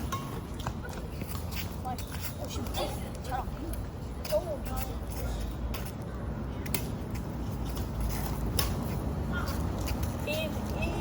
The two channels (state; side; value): identical; both; correlation 1.00